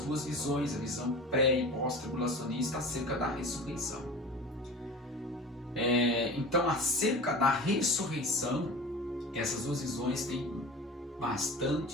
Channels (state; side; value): normal; both; correlation 0.35